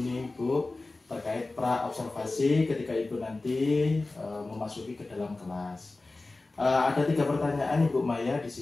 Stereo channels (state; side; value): quieter; right; 3.3 dB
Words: Bu terkait pra observasi ketika Ibu nanti memasuki ke dalam kelas. Ada 3 pertanyaan Ibu Maya di